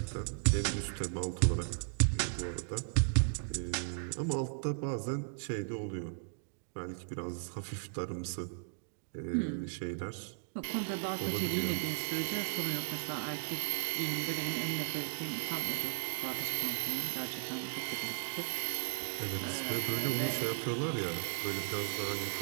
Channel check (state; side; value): silent; left; digital silence